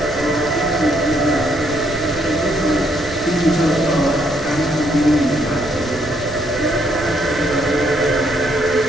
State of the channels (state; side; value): noise; right; rumble, 15 dB below the sound